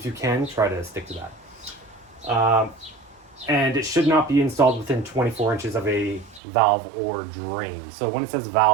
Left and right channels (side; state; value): left; drops out; at 6.4 s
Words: you can, try to stick to that. And it should not be installed within 24 inches of a valve or drain. So when it says